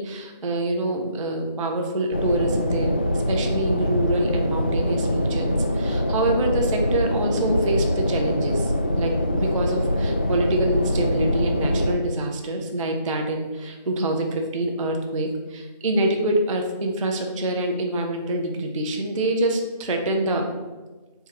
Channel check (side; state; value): both; inverted; correlation -0.65